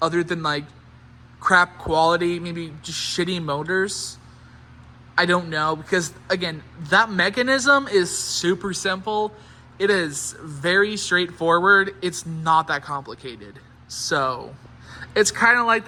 other than like crap quality, maybe just shitty motors. I don't know, because again, that mechanism is super simple. It is very straightforward. It's not that complicated. So it's kind of like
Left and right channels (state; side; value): identical; both; correlation 1.00